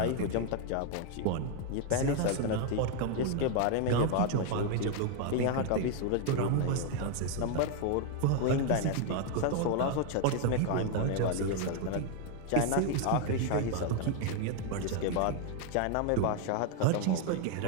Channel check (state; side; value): different; both; correlation 0.01